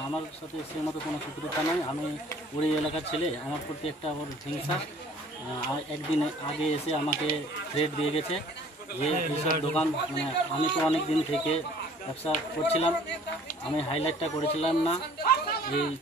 আমার সাথে সে মতো কোনো শত্রুতা নয়। আমি ওই এলাকার ছেলে, আমার প্রতি একটা ওর হিংসা। একদিন আগে এসে আমাকে থ্রেট দিয়ে গেছে যে এইসব দোকান, মানে আমি তো অনেক দিন থেকে ব্যবসা করছিলাম, আমি হাইলাইটটা করেছিলাম না। এই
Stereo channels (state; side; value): normal; both; correlation 0.53